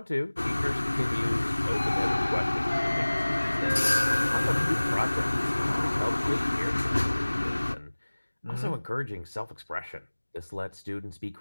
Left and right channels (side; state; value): both; inverted; correlation -1.00